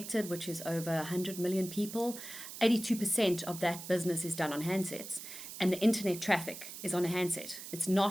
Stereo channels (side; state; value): right; noise; hiss, 11 dB below the sound